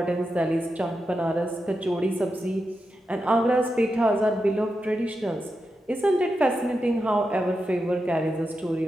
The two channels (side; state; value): both; normal; correlation 0.88